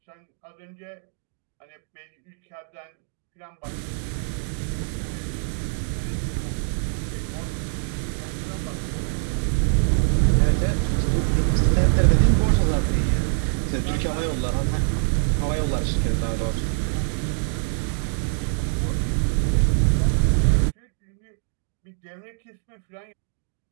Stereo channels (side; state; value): left; silent; 62 dB below the other